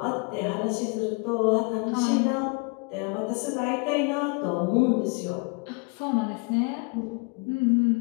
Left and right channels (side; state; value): right; quieter; 31.7 dB